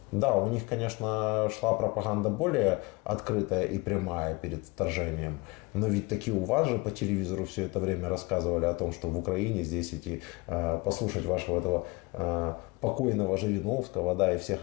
Да, у них, конечно, шла пропаганда более открытая и прямая перед вторжением, но ведь таки у вас же по телевизору все это время рассказывали о том, что в Украине здесь идти послушать вашего этого покойного Жириновского, да, и всех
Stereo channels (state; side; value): quieter; right; 25.0 dB